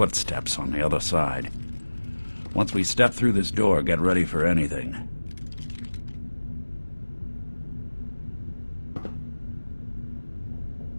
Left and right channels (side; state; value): both; inverted; correlation -1.00